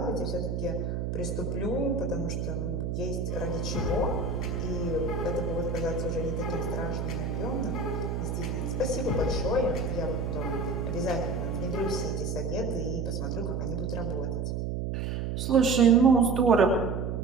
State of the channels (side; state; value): right; noise; hum, 2 dB below the sound